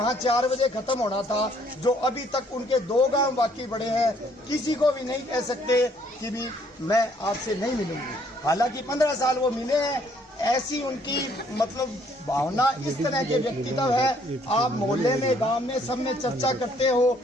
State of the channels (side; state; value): both; normal; correlation 0.64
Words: 4 बजे खत्म होना था, जो अभी तक उनके 2 गांव बाकी पड़े हैं। किसी को भी नहीं कह सकते कि भी मैं आपसे नहीं मिलूंगी। हालांकि 15 साल वो मिले हैं, ऐसी उनकी मतलब भावना, इस तरह के व्यक्तित्व है। आप मोहल्ले में, गांव में, सब में चर्चा करते हो।